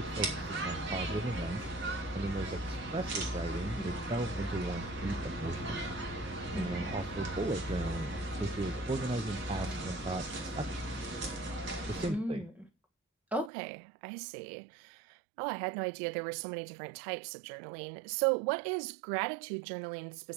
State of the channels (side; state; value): left; drops out; at 13.5 s